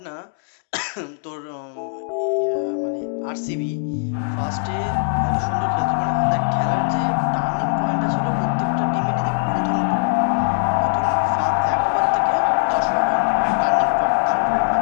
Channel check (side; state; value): right; silent; 65 dB below the other